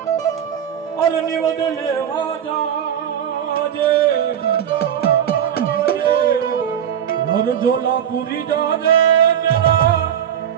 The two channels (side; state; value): left; quieter; 9.3 dB